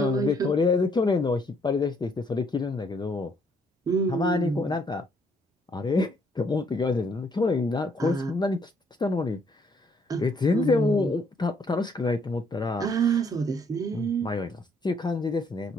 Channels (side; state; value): both; normal; correlation 0.67